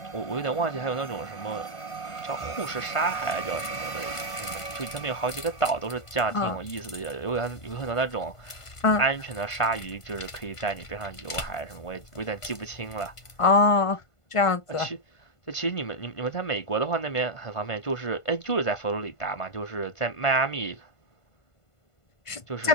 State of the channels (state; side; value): late; right; 1.5 ms